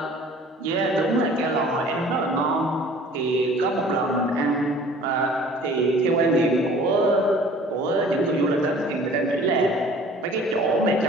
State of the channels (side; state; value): both; normal; correlation 0.49